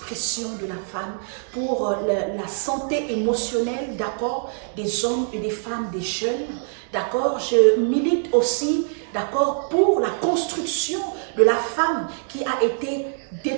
de la femme, pour la santé émotionnelle, d'accord, des hommes et des femmes, des jeunes, d'accord? Je milite aussi, d'accord, pour la construction de la femme qui a été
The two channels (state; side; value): silent; left; digital silence